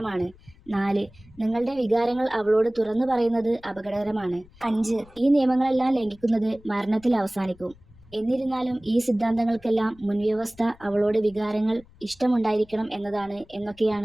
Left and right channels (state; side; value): noise; left; rumble, 26 dB below the sound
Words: 4, നിങ്ങളുടെ വികാരങ്ങൾ അവളോട് തുറന്നു പറയുന്നത് അപകടകരമാണ്. 5, ഈ നിയമങ്ങളെല്ലാം ലംഘിക്കുന്നത് മരണത്തിൽ അവസാനിക്കും. എന്നിരുന്നാലും ഈ സിദ്ധാന്തങ്ങൾക്കെല്ലാം മുൻവ്യവസ്ഥ അവളോട് വികാരങ്ങൾ ഇഷ്ടമുണ്ടായിരിക്കണം എന്നതാണ്